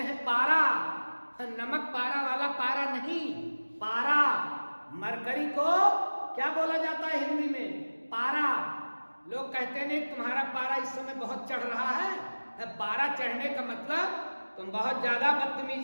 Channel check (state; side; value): inverted; both; correlation -1.00